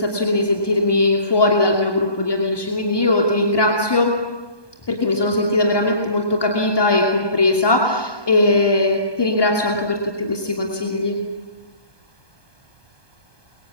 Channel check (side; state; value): right; late; 1.2 ms